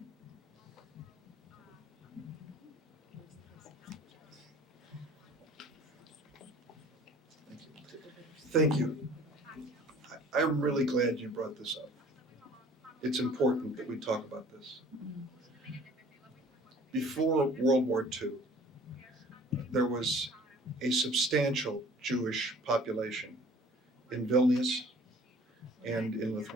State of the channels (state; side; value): normal; both; correlation 0.50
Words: Thank you. I'm really glad you brought this up. It's important that we talk about this. Before World War II, there was a substantial Jewish population in Vilnius and in